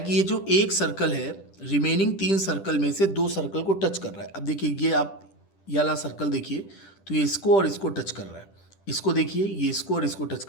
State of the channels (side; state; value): right; late; 10 ms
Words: ये जो एक सर्कल है रिमेनिंग तीन सर्कल में से दो सर्कल को टच कर रहा है। अब देखिए ये आप ये वाला सर्कल देखिए, तो ये इसको और इसको टच कर रहा है, इसको देखिए ये इसको और इसको टच